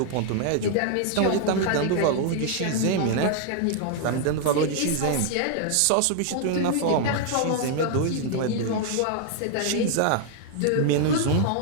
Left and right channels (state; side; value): different; both; correlation 0.00